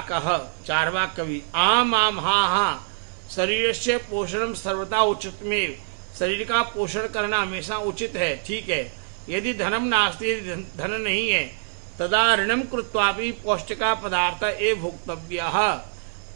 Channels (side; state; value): left; silent; 62 dB below the other